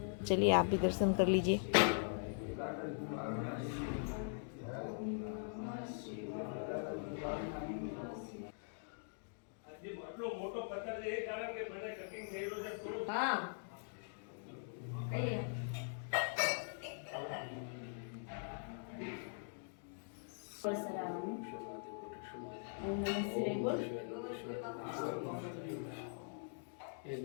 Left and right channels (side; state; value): right; silent; digital silence